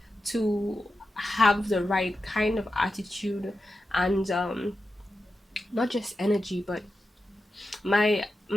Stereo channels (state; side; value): normal; both; correlation 0.90